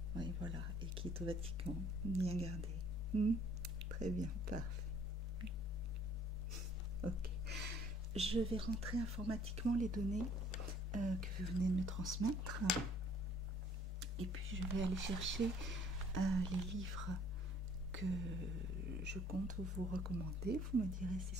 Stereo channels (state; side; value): normal; both; correlation 0.58